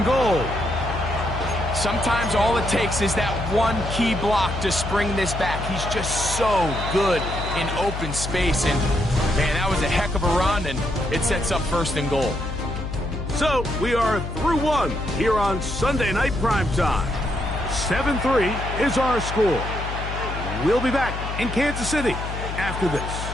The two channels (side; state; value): left; noise; hum, 6 dB below the sound